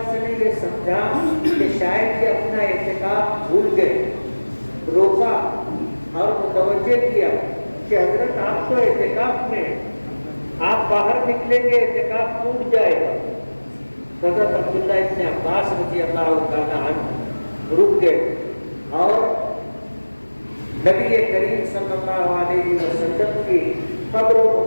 نے یہ سمجھا کہ شاید یہ اپنا اعتکاف بھول گئے، روکا اور متوجہ کیا کہ حضرت آپ تو اعتکاف میں، آپ باہر نکلیں گے اعتکاف ٹوٹ جائے گا۔ حضرت عبداللہ ابن عباس رضی اللہ تعالیٰ عنہ رک گئے اور نبی کریم صلی اللہ علیہ وسلم کی قبر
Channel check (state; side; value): inverted; both; correlation -1.00